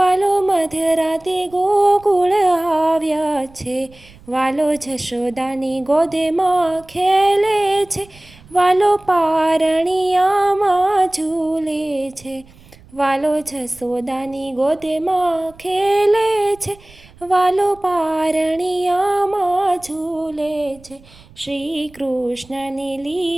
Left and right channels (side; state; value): right; noise; rumble, 25 dB below the sound